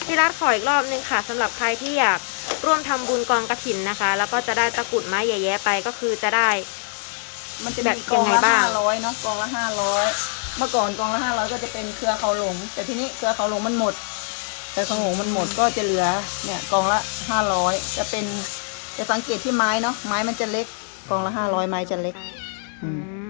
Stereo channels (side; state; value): right; silent; digital silence